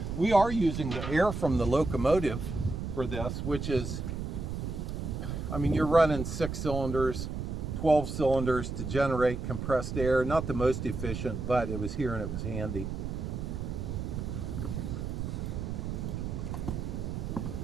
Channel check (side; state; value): right; noise; rumble, 4 dB below the sound